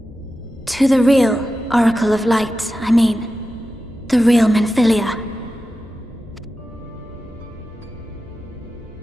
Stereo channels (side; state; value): both; normal; correlation 0.92